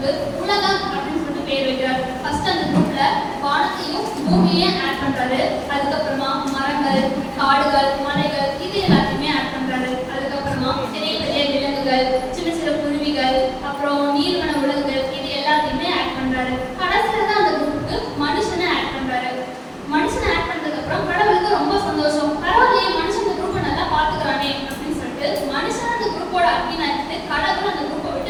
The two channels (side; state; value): both; identical; correlation 1.00